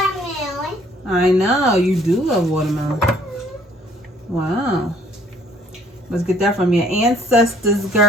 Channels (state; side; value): normal; both; correlation 0.61